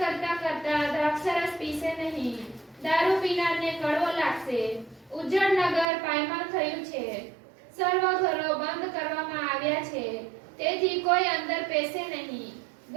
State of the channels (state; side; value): drops out; left; at 5.9 s